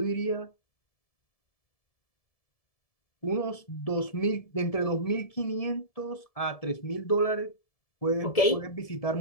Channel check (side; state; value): right; late; 1.7 ms